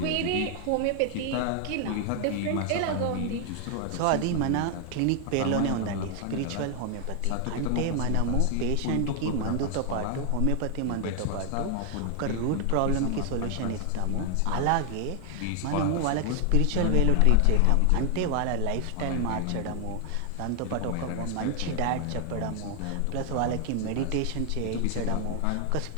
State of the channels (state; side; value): different; both; correlation 0.00